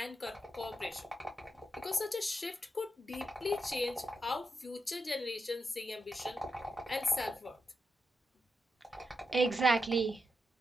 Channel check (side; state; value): both; normal; correlation 0.85